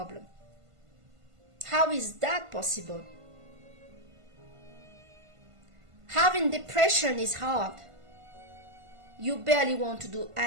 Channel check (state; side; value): late; left; 1.5 ms